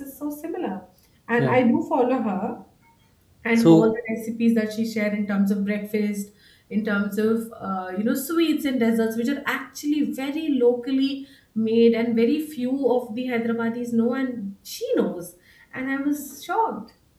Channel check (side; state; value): both; identical; correlation 1.00